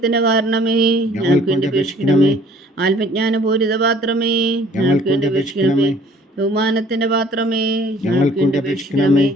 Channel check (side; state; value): both; normal; correlation 0.55